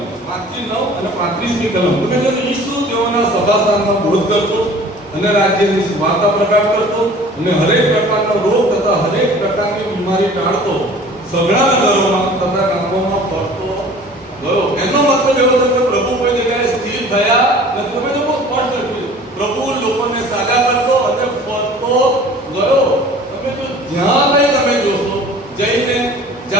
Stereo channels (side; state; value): both; normal; correlation 0.46